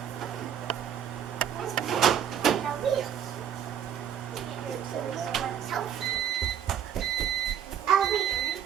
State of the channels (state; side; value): quieter; left; 9.2 dB